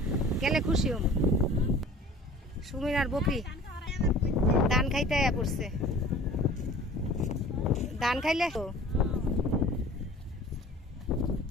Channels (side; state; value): both; normal; correlation 0.45